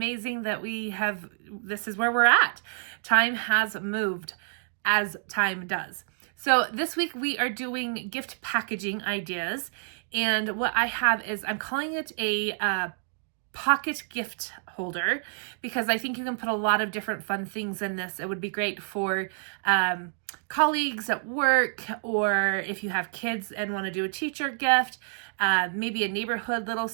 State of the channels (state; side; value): silent; left; digital silence